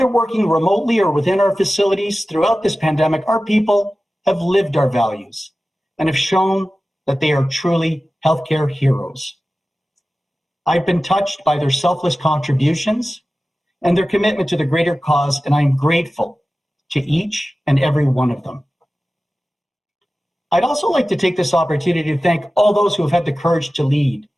working remotely or within our facilities throughout this pandemic, our people have lived our values and have shown that they are truly healthcare heroes. I've been touched by their selfless contributions and their commitment to the greater cause, and I'm grateful to each and every one of them. I'd also like to take this opportunity to thank all those who have had the courage to lead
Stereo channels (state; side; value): normal; both; correlation 0.95